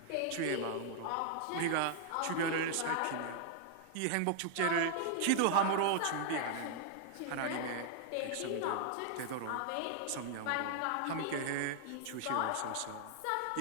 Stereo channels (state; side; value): different; both; correlation 0.00